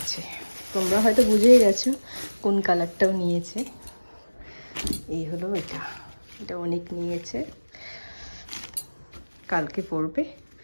তোমরা হয়তো বুঝেই গেছো কোন কালারটাও নিয়েছে। এই হলো এটা, এটা অনেক নিয়েছে, কালকে পরবে।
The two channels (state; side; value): inverted; both; correlation -1.00